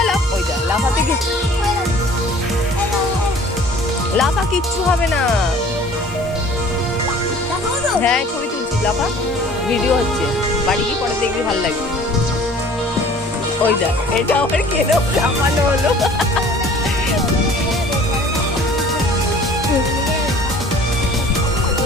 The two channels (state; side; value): normal; both; correlation 0.49